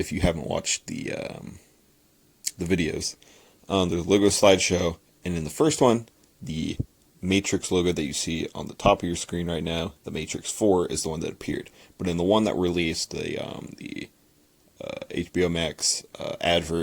you haven't watched the videos, there's a logo slideshow, and in the first one, the Matrix logo that you see on the top of your screen right now, the Matrix 4, is the one that appeared. But in the one that released, the HBO Max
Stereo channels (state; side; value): identical; both; correlation 1.00